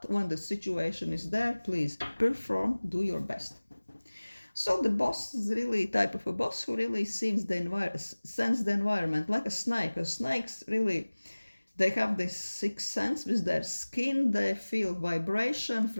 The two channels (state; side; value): inverted; both; correlation -1.00